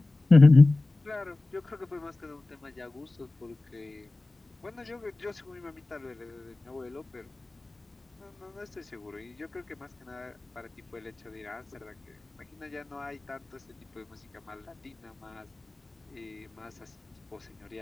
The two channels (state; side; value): quieter; right; 3.0 dB